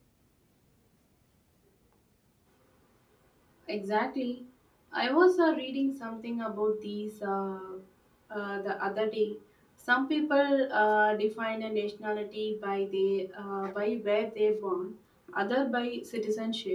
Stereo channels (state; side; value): identical; both; correlation 1.00